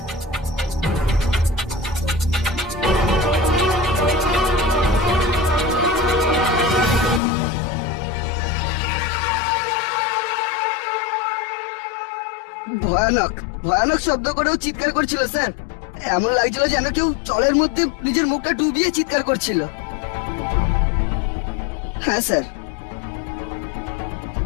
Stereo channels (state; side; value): drops out; right; at 7.2 s